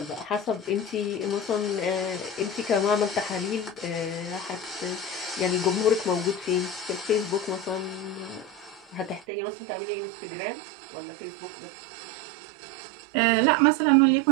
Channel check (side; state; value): left; drops out; at 9.2 s